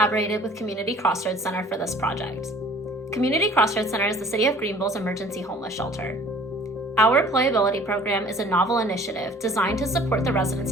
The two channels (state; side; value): normal; both; correlation 0.51